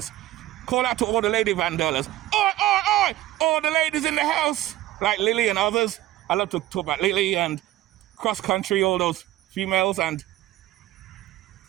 Call out to all the lady van dwellers. Oi! All the ladies in the house. Like Lily and others. I love to talk about Lily and cross country, all those females and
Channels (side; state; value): left; quieter; 15.3 dB